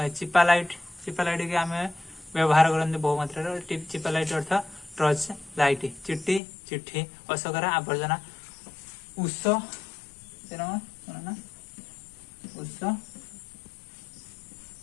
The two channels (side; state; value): right; drops out; at 6.4 s